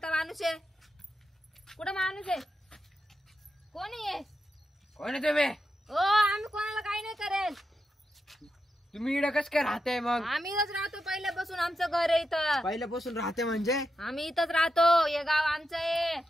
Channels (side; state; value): both; normal; correlation 0.87